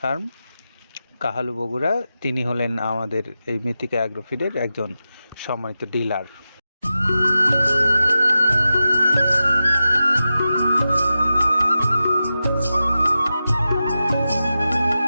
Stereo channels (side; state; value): both; inverted; correlation -0.92